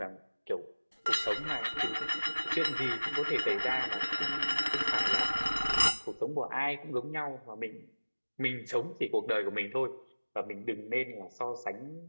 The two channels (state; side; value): inverted; both; correlation -1.00